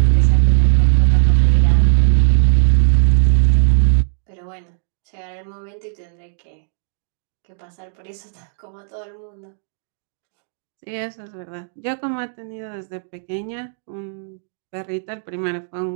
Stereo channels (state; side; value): silent; left; digital silence